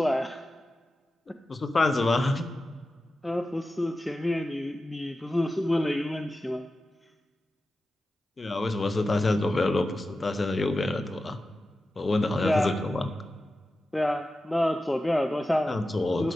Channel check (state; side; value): normal; both; correlation 0.93